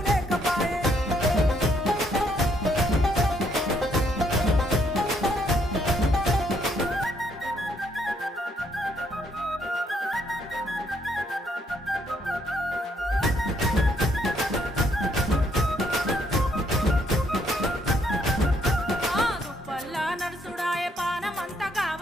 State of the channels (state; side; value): normal; both; correlation 0.71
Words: లేకపాయే తుప్పల్లా నడుసుడాయే పానమంత